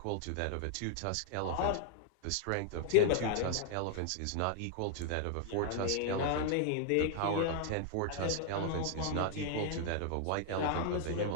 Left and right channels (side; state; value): both; different; correlation 0.00